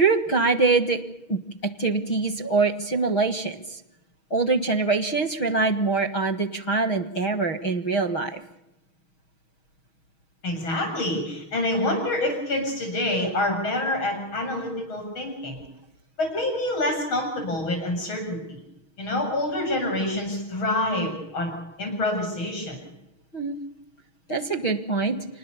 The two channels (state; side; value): late; right; 6.3 ms